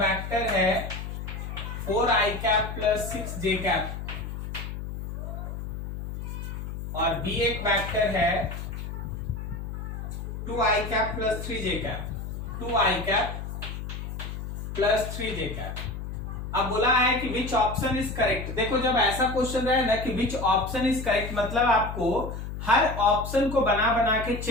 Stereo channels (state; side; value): noise; left; hum, 7 dB below the sound